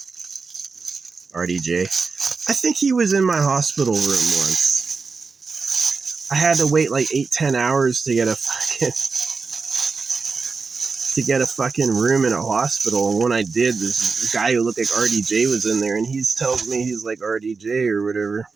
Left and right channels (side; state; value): left; quieter; 4.6 dB